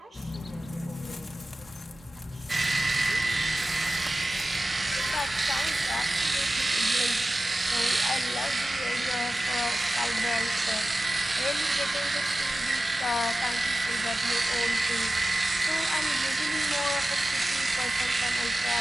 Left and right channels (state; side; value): normal; both; correlation 0.95